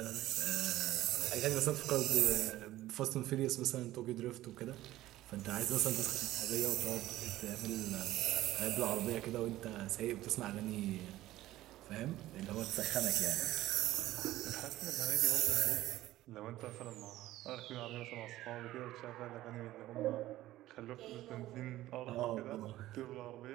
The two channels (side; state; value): left; quieter; 15.5 dB